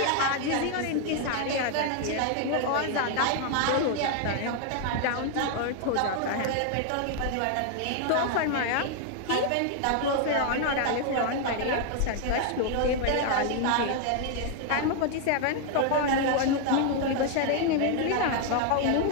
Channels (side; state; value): both; different; correlation 0.00